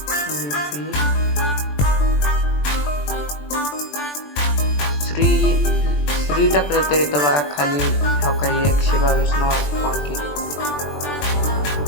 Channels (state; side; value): late; right; 20 ms